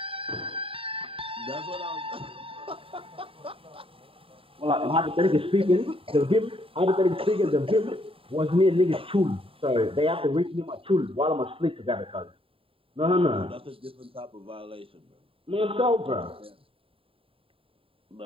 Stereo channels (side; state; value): left; late; 0.27 ms